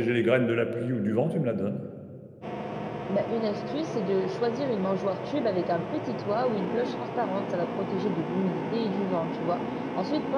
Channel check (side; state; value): both; identical; correlation 1.00